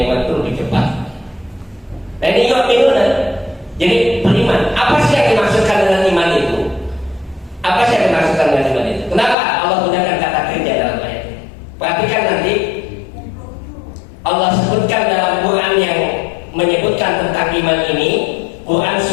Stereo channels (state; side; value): drops out; right; at 9.3 s